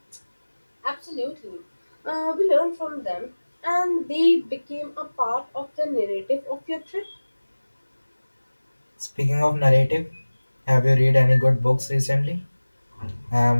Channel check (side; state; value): both; inverted; correlation -1.00